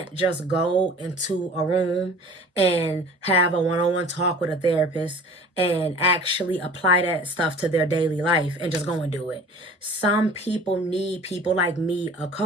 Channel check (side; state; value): both; normal; correlation 0.44